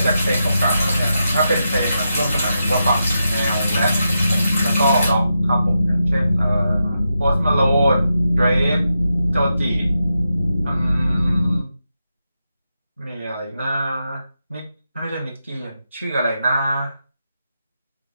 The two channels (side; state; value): both; inverted; correlation -0.86